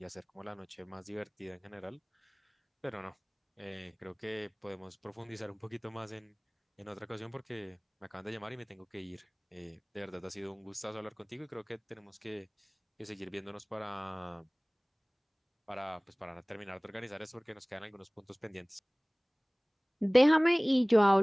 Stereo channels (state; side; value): identical; both; correlation 1.00